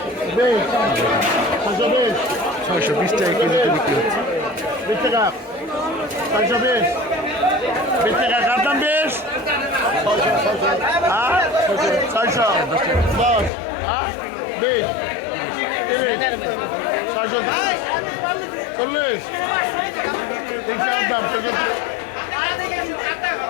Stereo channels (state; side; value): drops out; right; at 13.5 s